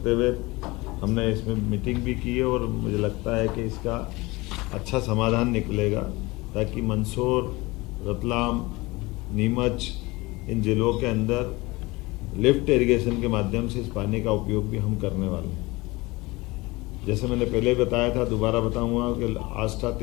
हुए हमने इसमें मीटिंग भी की है, और मुझे लगता है कि इसका अच्छा समाधान निकलेगा, ताकि मंदसौर, रतलाम, नीमच, इन जिलों के अंदर लिफ्ट इरिगेशन के माध्यम से इस पानी का उपयोग भी हम करने वाले हैं। जैसे मैंने पहले बताया था, दोबारा बताऊंगा कि आष्टा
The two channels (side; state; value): right; quieter; 22.4 dB